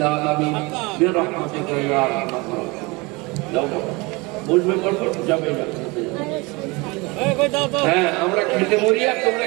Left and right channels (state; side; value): quieter; left; 25.6 dB